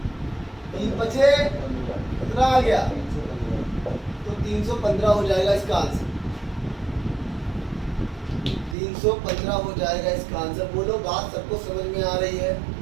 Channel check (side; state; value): left; drops out; at 8.8 s